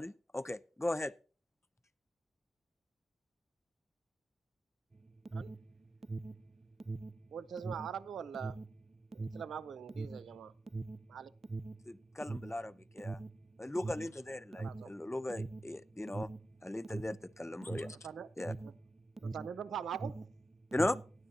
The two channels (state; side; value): normal; both; correlation 0.91